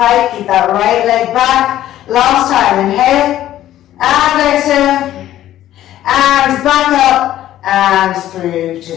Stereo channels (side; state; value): right; quieter; 13.0 dB